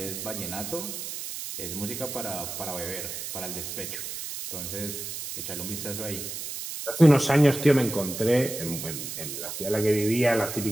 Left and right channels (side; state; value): right; noise; hiss, 7 dB below the sound